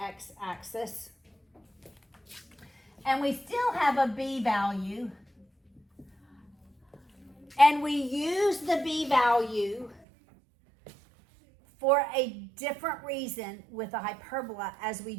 and we still have a B value, and we use the B value for a different reason with a hyperbola as we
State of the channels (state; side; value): drops out; left; at 10.0 s